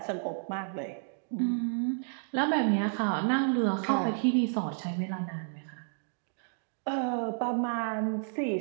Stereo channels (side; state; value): left; silent; digital silence